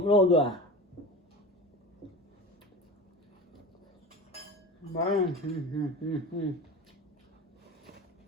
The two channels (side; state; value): both; normal; correlation 0.31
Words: luôn rồi à